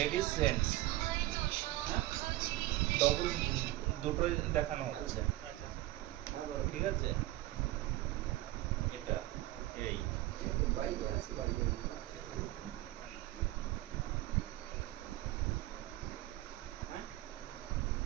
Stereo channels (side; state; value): left; quieter; 16.9 dB